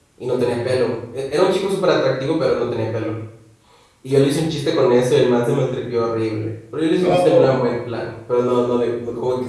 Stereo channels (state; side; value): identical; both; correlation 1.00